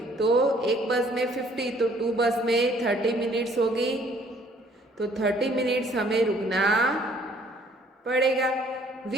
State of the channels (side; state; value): both; normal; correlation 0.60